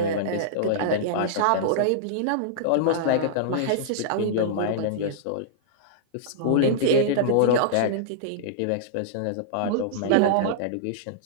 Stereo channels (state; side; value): different; both; correlation -0.02